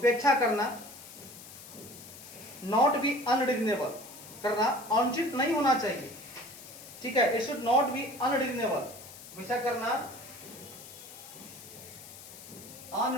करना, नॉट बी अनरीजनेबल करना, अनुचित नहीं होना चाहिए, ठीक है, it should not be unreasonable, हमेशा करना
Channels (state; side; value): noise; left; hiss, 16 dB below the sound